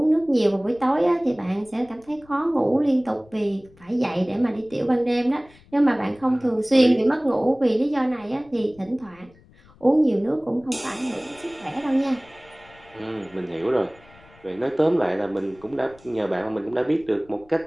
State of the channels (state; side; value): noise; left; rumble, 27 dB below the sound